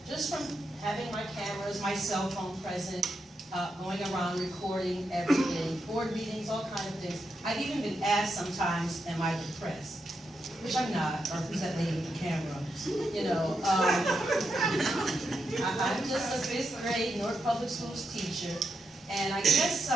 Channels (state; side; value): normal; both; correlation 0.84